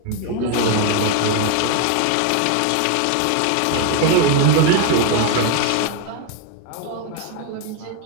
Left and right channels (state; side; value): different; both; correlation 0.01